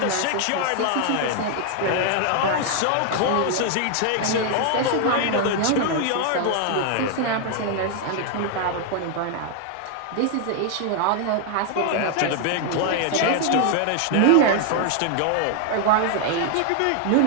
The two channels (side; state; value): both; different; correlation 0.00